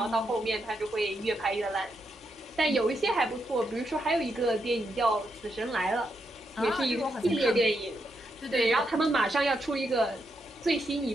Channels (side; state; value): both; normal; correlation 0.82